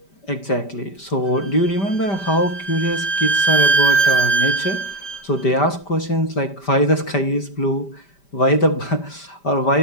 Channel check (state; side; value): late; right; 5.1 ms